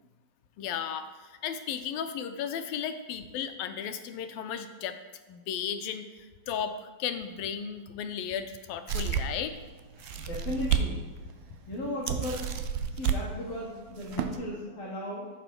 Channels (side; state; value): right; late; 12 ms